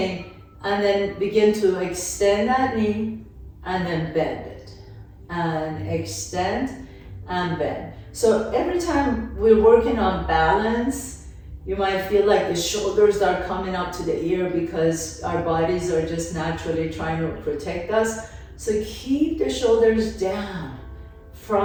and then begin to extend that knee, and then bend it. And extend and bend. So every time we're working on balance, you might feel like the shoulders are coming up to the ear because our bodies are just naturally trying to protect us. So keep the shoulders down,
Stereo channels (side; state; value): both; identical; correlation 1.00